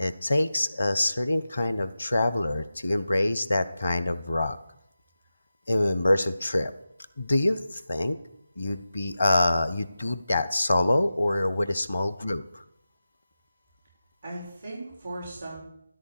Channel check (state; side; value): inverted; both; correlation -0.93